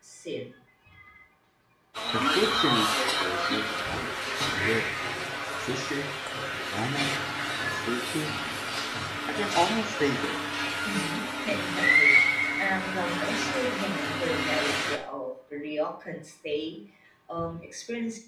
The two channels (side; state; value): both; identical; correlation 1.00